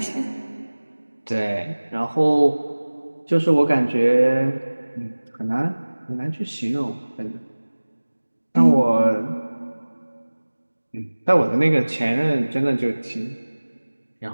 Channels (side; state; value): both; inverted; correlation -1.00